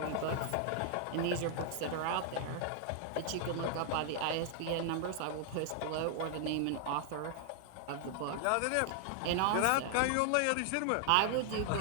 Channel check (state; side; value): different; both; correlation 0.00